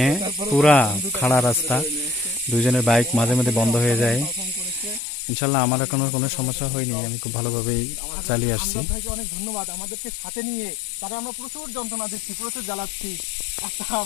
পুরা খাড়া রাস্তা, দুজনের বাইক মাঝে মাঝে বন্ধ হয়ে যায়। ইনশাল্লাহ আমার এখনো কোনো সমস্যা হয়নি, আমি খুব ভালোভাবেই চালিয়ে আসছি। ভাইকে অনেক ধন্যবাদ, আমাদেরকে সাথে নিয়ে। তারা আমরা প্রচুর যন্ত্রণা দিচ্ছি, প্রচুর জ্বালাচ্ছি। একটা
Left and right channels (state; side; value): drops out; right; at 5.0 s